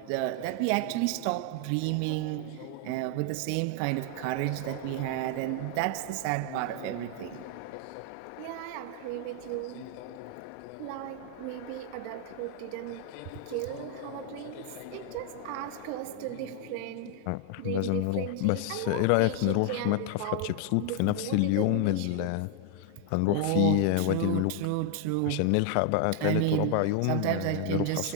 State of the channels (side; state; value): both; different; correlation 0.00